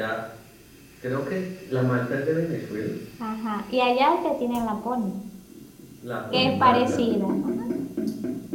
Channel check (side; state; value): both; identical; correlation 1.00